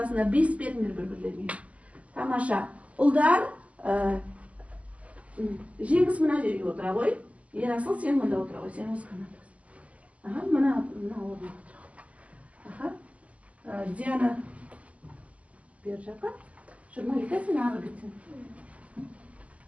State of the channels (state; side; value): late; left; 0.068 ms